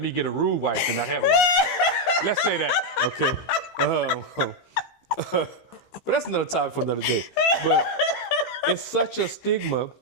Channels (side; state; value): right; late; 15 ms